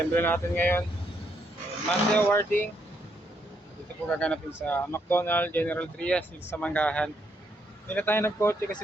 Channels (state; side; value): normal; both; correlation 0.75